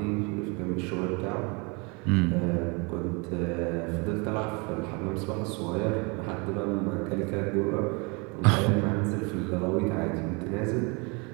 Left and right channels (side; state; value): left; quieter; 30.3 dB